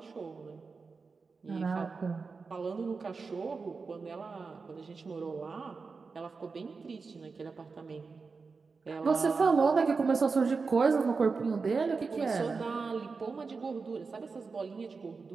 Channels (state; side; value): quieter; left; 4.6 dB